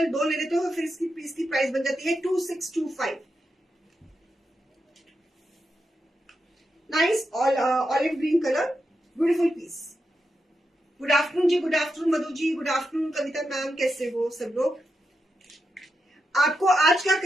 2 ले लेते हो फिर इसकी पीस की प्राइस बन जाती है 2625. Nice olive green colour, beautiful piece. Good afternoon ji, good afternoon Madhu ji, good afternoon Kavita ma'am, कैसे हो सब लोग? आपको आज का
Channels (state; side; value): normal; both; correlation 0.87